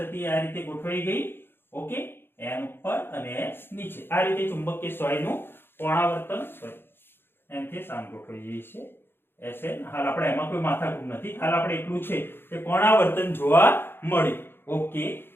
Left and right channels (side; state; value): right; late; 0.10 ms